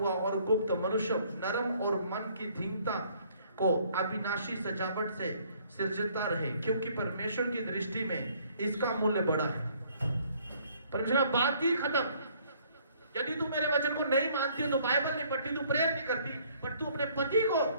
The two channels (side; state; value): both; inverted; correlation -0.61